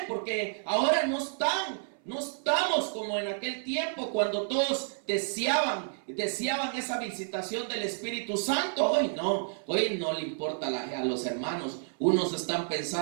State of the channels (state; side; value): silent; left; 58 dB below the other